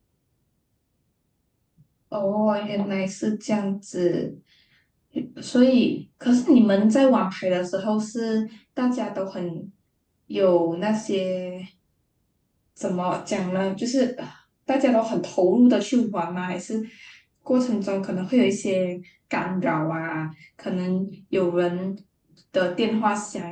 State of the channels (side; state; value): both; identical; correlation 1.00